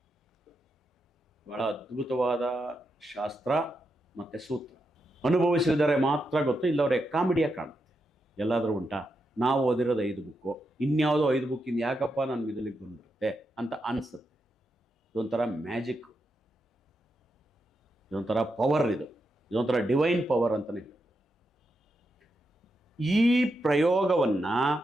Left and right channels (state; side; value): normal; both; correlation 0.85